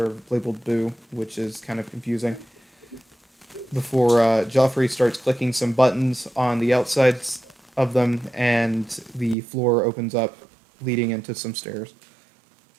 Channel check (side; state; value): left; drops out; at 9.3 s